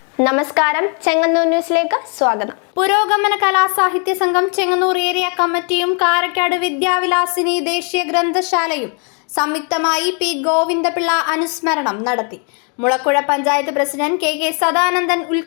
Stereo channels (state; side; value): quieter; right; 39.8 dB